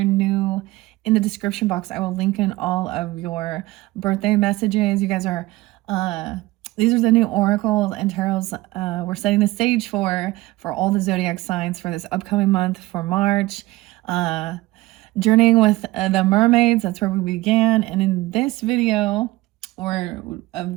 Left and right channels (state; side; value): quieter; left; 18.9 dB